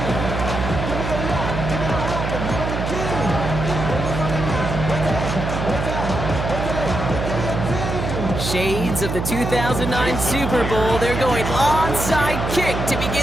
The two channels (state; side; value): noise; right; hum, 3 dB below the sound